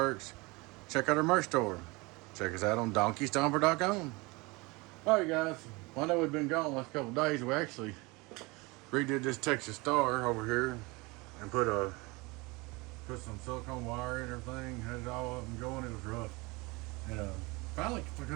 Check out our merch store. Check us out on DonkeyStomper.com. Alright guys, well, I know we've been gone the last couple of days. We actually redid this Texas Star over here and put some silicone wire and everything, had it all up and going. It was rough. And finally, I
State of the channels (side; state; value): left; quieter; 25.0 dB